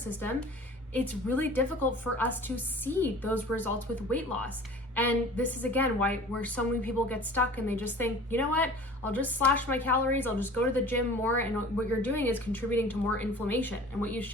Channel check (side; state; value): both; normal; correlation 0.43